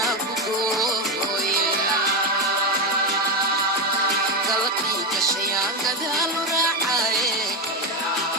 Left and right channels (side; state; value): both; normal; correlation 0.12